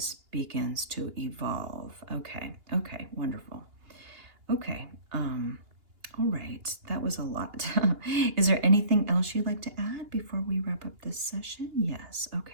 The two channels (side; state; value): left; late; 2.8 ms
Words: begins to evolve. Okay, wonderful. Okay, all right, that was a lot. Is there anything else you'd like to add before we wrap up this session? Yes,